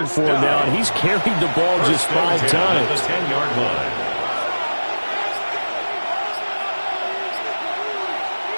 for him now, and he's carried the ball just 5 times. The 10-yard line.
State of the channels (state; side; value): inverted; both; correlation -1.00